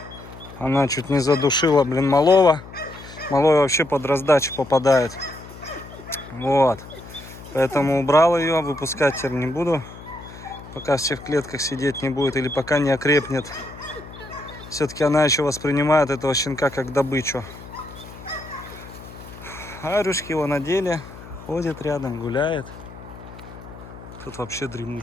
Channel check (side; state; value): left; noise; hum, 16 dB below the sound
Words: Она чуть не задушила, блин, малого. Малой вообще под раздачу попадает. Вот. Поэтому убрал ее, выпускать теперь не буду. Пока все в клетках сидеть не будет или пока не окрепнет. Все-таки она еще воспринимает этого щенка как добычу. Арюшки его надели, ходит рядом, гуляет. Тут вообще